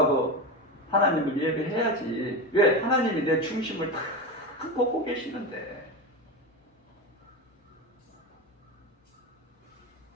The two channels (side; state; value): both; normal; correlation 0.20